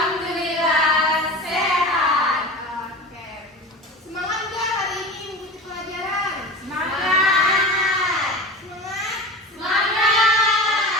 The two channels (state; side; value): normal; both; correlation 0.32